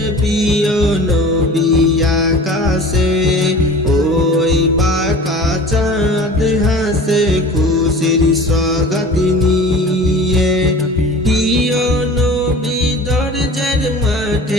প্রিয় নবী আকাশে ওই বাঁকা চাঁদ হাসে খুশির স্বাগত নিয়ে। প্রিয় নবী দরজার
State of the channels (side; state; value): both; normal; correlation 0.40